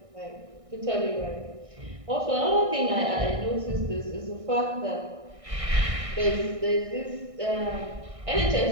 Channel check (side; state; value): left; late; 1.6 ms